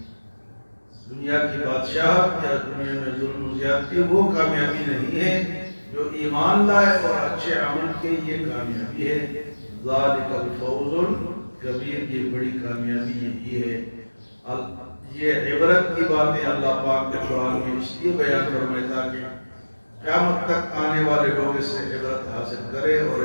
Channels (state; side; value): inverted; both; correlation -1.00